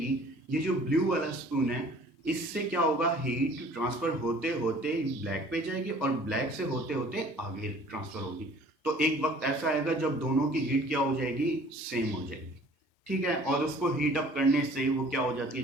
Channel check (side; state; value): both; normal; correlation 0.51